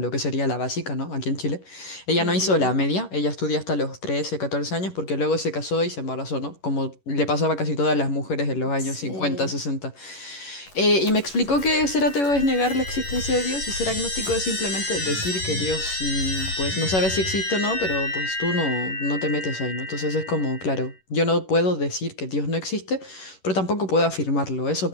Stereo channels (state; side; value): late; right; 11 ms